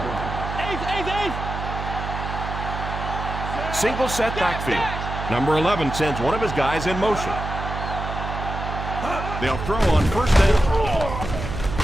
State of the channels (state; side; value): noise; right; hum, 6 dB below the sound